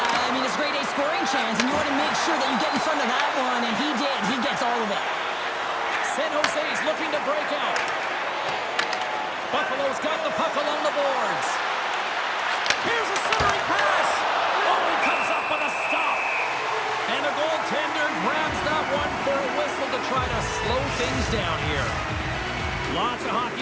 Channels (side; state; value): both; identical; correlation 1.00